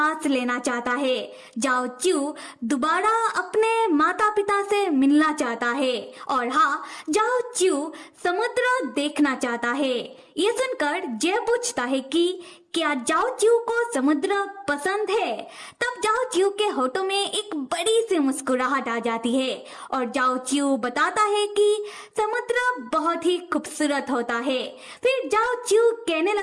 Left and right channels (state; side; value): identical; both; correlation 1.00